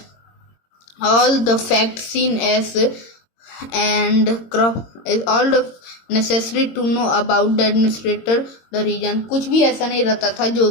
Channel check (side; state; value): right; late; 22 ms